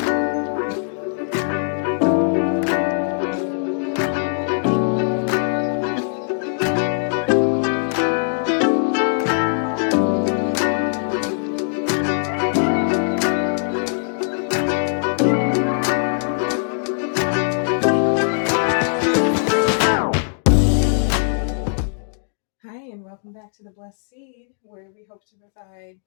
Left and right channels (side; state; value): right; silent; digital silence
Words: and welcome back to the Blessed Seed, where we hope to provide